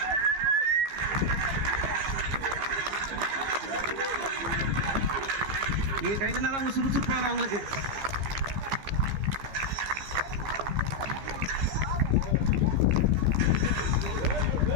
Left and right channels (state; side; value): late; left; 15 ms